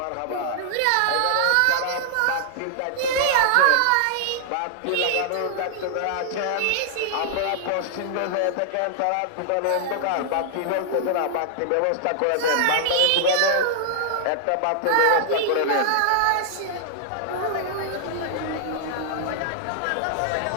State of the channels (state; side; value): different; both; correlation -0.01